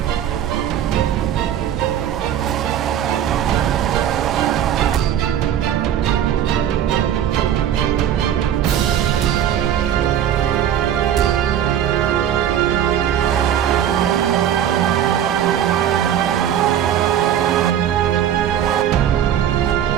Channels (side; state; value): left; quieter; 10.1 dB